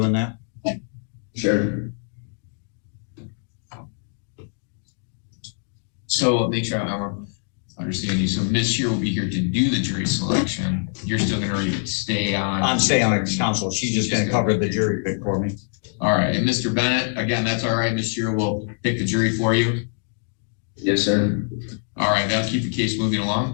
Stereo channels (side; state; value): right; silent; digital silence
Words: that? Sure. So make sure I understand you. So Ms. Shearer will be here to do the jury selection. You're still going to stay on? I'm staying on as counsel. She's just going to cover the jury pick for me. All right. And Mr. Bennett, again, that's all right. Ms. Shearer will pick the jury for you. Yes, sir. All right. That'll keep the case moving